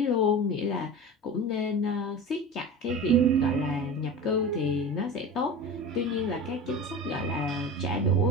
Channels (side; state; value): both; normal; correlation 0.31